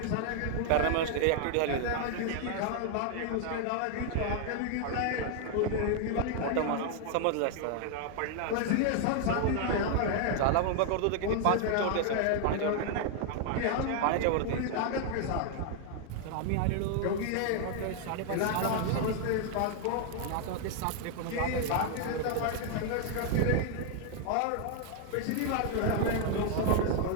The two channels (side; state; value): both; different; correlation 0.00